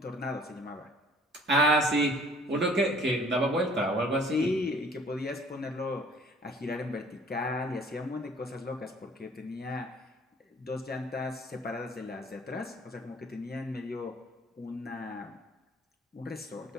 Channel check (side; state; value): both; normal; correlation 0.54